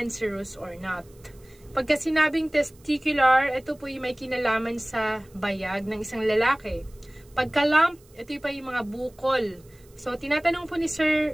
or not? Pagka sinabing testicular, ito po yung may kinalaman sa bayag ng isang lalaki. Pagka lump, ito pa yung mga bukol. So, tinatanong po ni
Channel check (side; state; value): right; noise; hiss, 29 dB below the sound